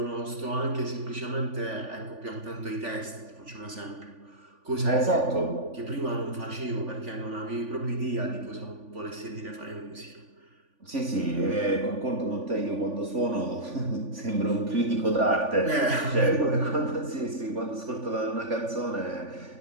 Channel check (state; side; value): late; left; 3.5 ms